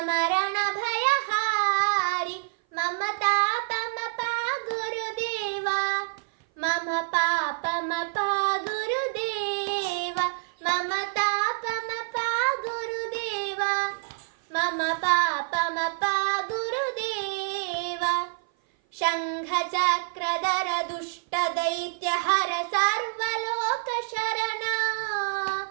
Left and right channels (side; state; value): left; silent; 56 dB below the other